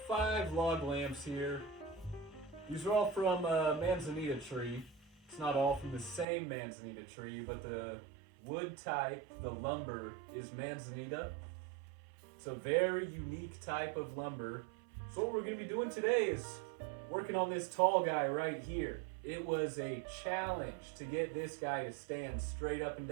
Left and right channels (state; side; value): drops out; left; at 6.2 s